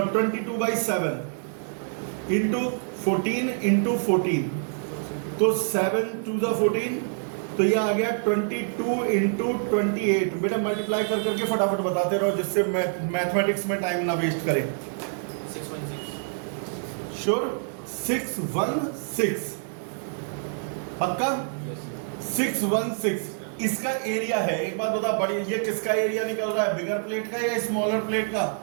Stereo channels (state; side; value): silent; left; 61 dB below the other